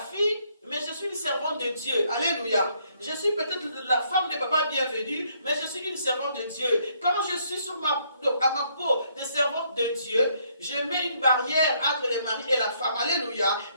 mais je suis une servante de Dieu. Alléluia. Je suis peut-être la femme de papa bienvenue, mais je suis une servante de Dieu. Quand je suis à ma peau de servante de Dieu, je mets une barrière entre les maris et la femme. Alléluia.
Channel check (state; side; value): inverted; both; correlation -0.69